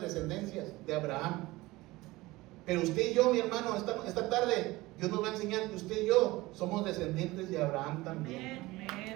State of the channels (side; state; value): left; quieter; 20.0 dB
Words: descendencias de Abraham. Pero usted y yo, mi hermano, esta tarde Dios nos va a enseñar que usted y yo somos descendientes de Abraham también.